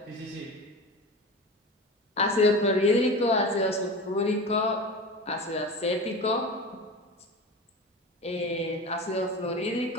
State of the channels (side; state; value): both; normal; correlation 0.30